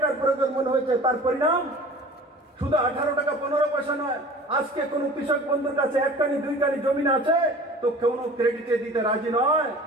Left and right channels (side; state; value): both; normal; correlation 0.42